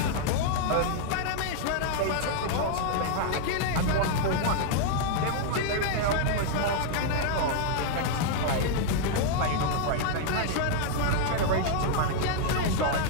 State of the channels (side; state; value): both; different; correlation 0.00